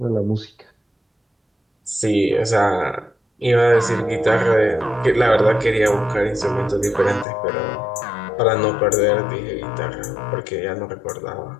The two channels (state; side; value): drops out; right; at 7.2 s